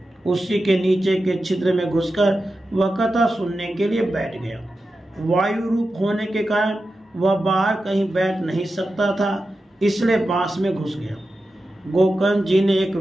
उसी के नीचे के छिद्र में घुसकर वह कथा सुनने के लिए बैठ गया। वायु रूप होने के कारण वह बाहर कहीं बैठ नहीं सकता था, इसलिए बांस में घुस गया। गोकर्ण जी ने एक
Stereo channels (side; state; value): both; normal; correlation 0.91